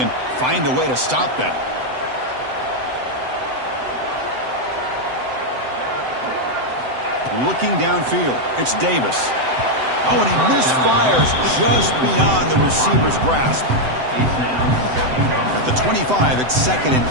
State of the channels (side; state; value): left; late; 7.9 ms